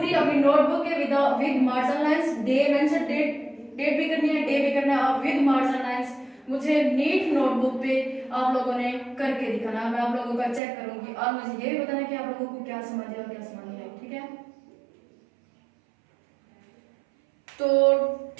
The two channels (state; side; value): drops out; left; at 10.6 s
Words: अपनी नोटबुक के with margin lines, day mention, date भी करनी है, डे भी करना है, और विद मार्जिन लाइंस मुझे नीट नोटबुक पे आप लोगों ने करके दिखाना। मैं आप लोगों का चेक करूंगी और मुझे ये भी बताना कि आप लोगों को क्या समझ आया और क्या समझ नहीं आया। ठीक है, तो